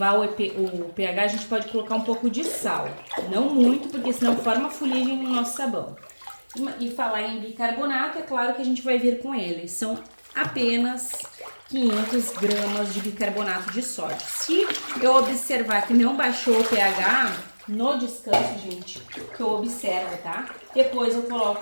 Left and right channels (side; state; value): both; inverted; correlation -1.00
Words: o pH, a gente pode colocar um pouco de sal. Não muito, porque senão forma fuligem no nosso sabão. E falar em bicarbonato, é claro que a gente vai vir com ele. São apenas 500 gramas de bicarbonato de sódio. Se eu observar que não baixou o pH no descanso, gente, que eu observo, tá? Depois eu